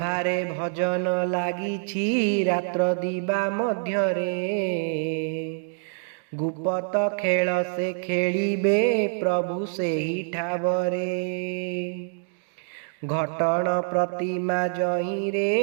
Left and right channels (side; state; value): left; silent; digital silence